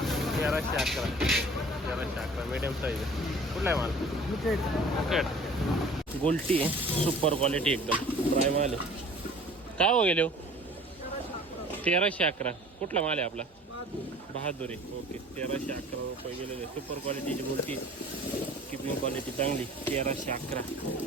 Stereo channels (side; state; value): both; normal; correlation 0.47